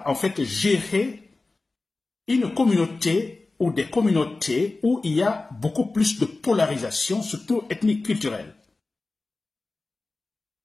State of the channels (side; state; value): right; quieter; 3.4 dB